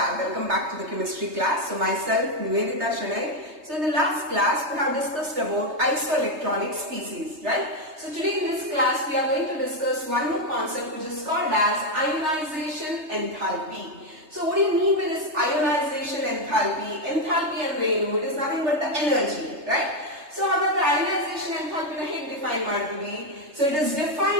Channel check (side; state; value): left; late; 3.3 ms